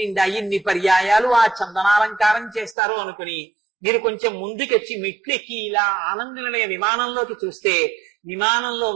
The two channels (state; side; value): drops out; left; at 2.8 s